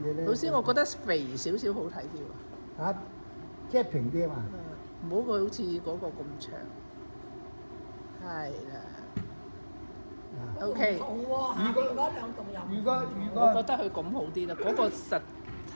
咧。老師，我覺得肥少少好睇啲喎。嚇，即係平啲啊嘛。唔好佢好似嗰個咁長。係啦。OK。如果嗰兩棟又如果我覺得佢咁好啲啦，嗰個實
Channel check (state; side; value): inverted; both; correlation -1.00